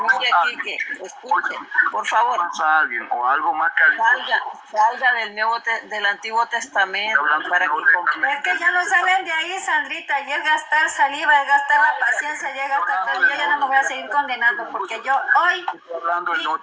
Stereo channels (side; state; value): both; identical; correlation 1.00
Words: Quique, escuchen, por favor. A alguien o algo más que salga del Antiguo Testamento para que comprenda. Es que ya no salen de ahí, Sandrita, y es gastar saliva, es gastar la paciencia, ya gastar todo. Yo ya no me voy a seguir condenando, porque yo hoy... Estoy hablando del Nuevo